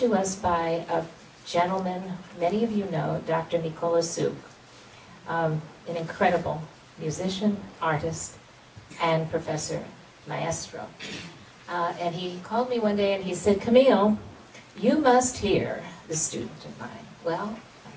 us by a gentleman many of you know, Dr. Nicola Suk, an incredible musician, artist, and professor, maestro. And he called me one day and he said, Camille, you must hear the student of mine. Well,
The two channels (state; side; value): identical; both; correlation 1.00